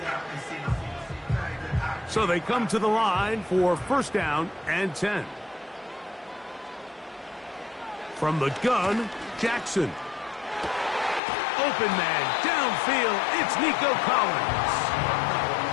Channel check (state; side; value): drops out; right; at 11.2 s